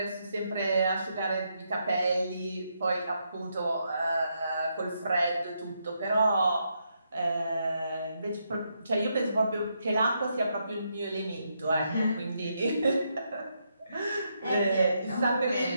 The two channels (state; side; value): inverted; both; correlation -0.80